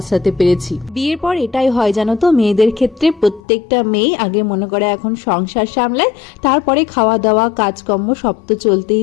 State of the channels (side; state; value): right; drops out; at 3.4 s